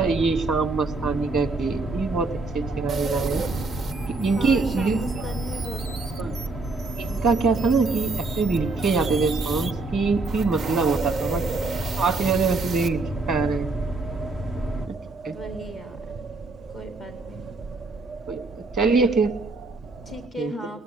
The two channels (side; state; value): left; quieter; 3.5 dB